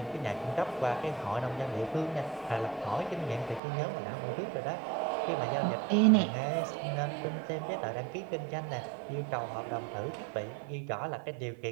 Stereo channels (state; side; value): drops out; left; at 3.6 s